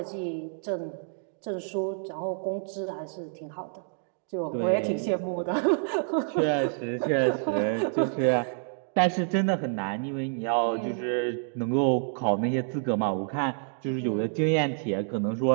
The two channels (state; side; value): silent; left; digital silence